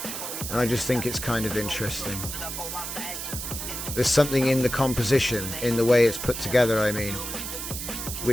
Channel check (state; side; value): noise; right; hiss, 6 dB below the sound